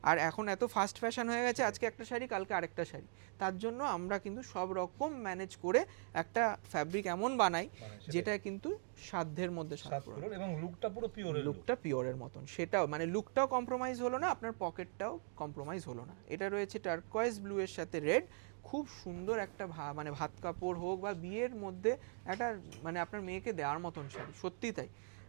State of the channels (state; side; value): silent; left; 51 dB below the other